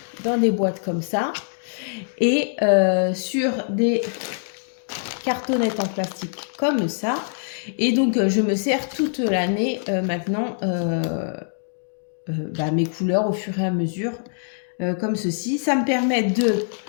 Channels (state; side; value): silent; right; digital silence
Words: dans des boîtes comme ça et sur des cartonnettes en plastique comme ça. Et donc je me sers toute l'année maintenant mes couleurs au fur et à mesure comme ceci. Ça me permet de